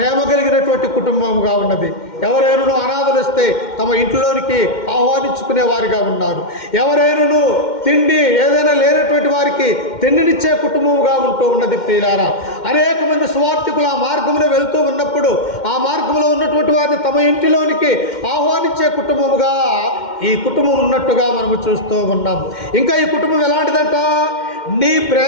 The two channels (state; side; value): late; right; 2.1 ms